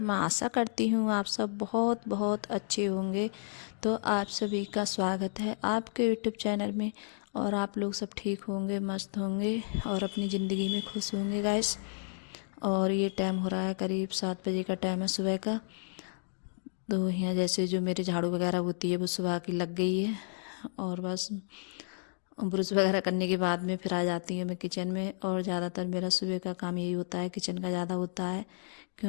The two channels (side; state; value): right; silent; digital silence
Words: आशा करती हूँ आप सब बहुत बहुत अच्छे होंगे। तो आप सभी का स्वागत है आपके यूट्यूब चैनल में। और आप लोग सब ठीक होंगे, मस्त होंगे और अपनी ज़िंदगी में खुश होंगे गाइस। और ये टाइम हो रहा है करीब 7 बजे का टाइम है सुबह का। तो यहाँ जैसे जो मेरे झाड़ू वगैरह होती है वो सुबह की लग गई है। और बस ब्रश वगैरह करने के बाद में फिर आ जाती हूँ मैं किचन में। और ज़्यादातर मेरा सुबह का काम यही होता है, किचन का ज़्यादा होता है।